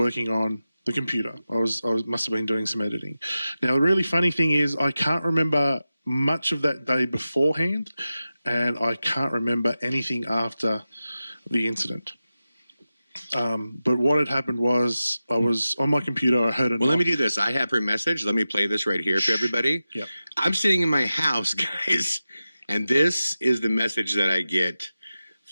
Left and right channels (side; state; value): both; inverted; correlation -0.93